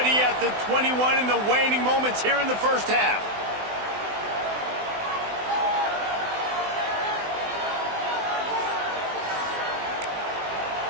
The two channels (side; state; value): left; late; 20 ms